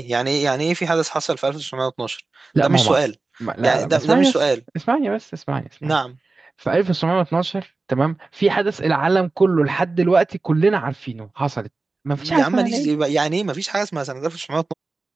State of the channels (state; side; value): quieter; left; 3.6 dB